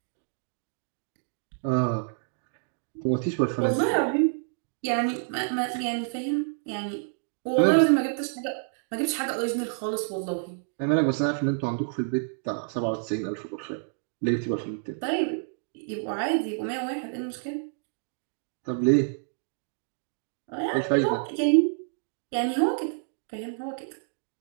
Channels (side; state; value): left; silent; digital silence